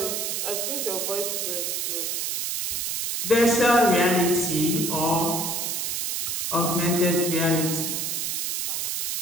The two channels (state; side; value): noise; right; hiss, 1 dB below the sound